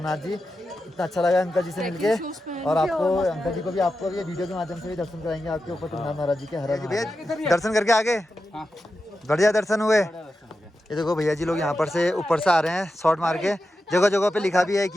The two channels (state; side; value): normal; both; correlation 0.90